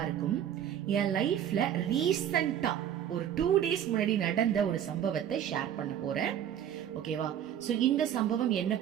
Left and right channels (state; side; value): quieter; left; 10.0 dB